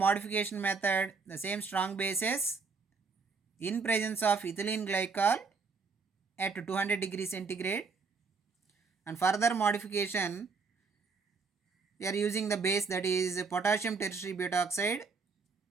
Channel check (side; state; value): left; quieter; 4.8 dB